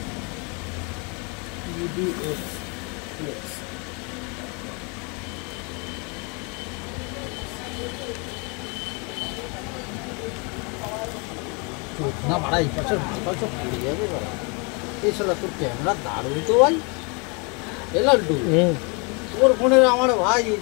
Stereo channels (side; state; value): right; quieter; 32.6 dB